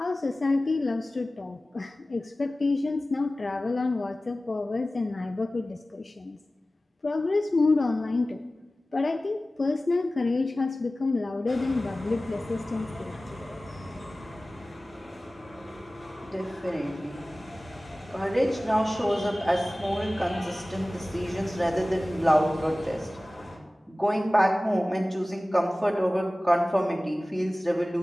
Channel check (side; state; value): both; normal; correlation 0.97